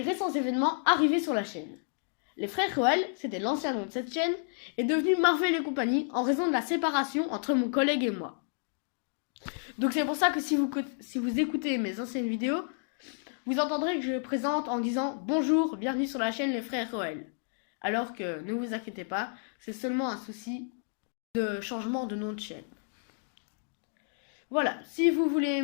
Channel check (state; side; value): silent; right; 57 dB below the other